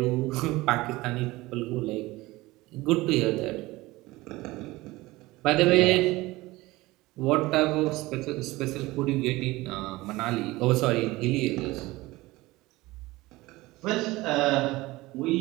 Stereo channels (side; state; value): left; quieter; 19.9 dB